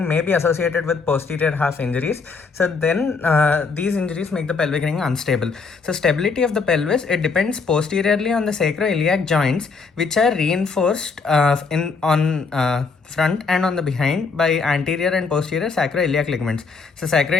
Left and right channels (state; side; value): quieter; right; 4.7 dB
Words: may be associated with posterior half injuries. So then these injuries make the pelvic ring unstable. So stability of the pelvis, it depends posteriorly on the sacroiliac joints, which are reinforced on front and on the behind by anterior and posterior sacroiliac ligaments. So